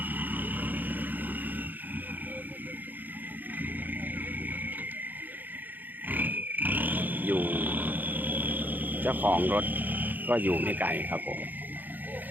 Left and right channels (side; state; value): left; late; 0.086 ms